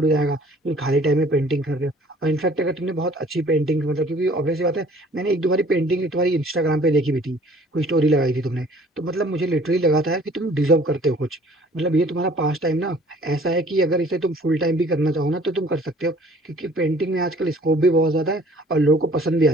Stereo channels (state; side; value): normal; both; correlation 0.54